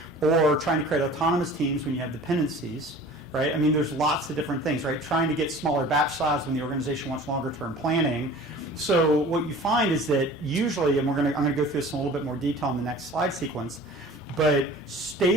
or trying to create autonomous teams when you have dependencies. Right? I mean, there's lots of different things, right? Trying to get smaller batch size when the organization wants longer term planning. So what you find is that usually, and I'm going to go through this in a little bit more detail in the next slide sequence, but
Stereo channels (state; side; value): normal; both; correlation 0.43